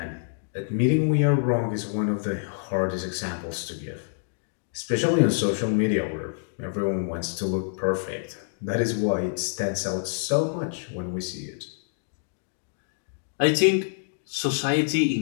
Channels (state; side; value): silent; right; digital silence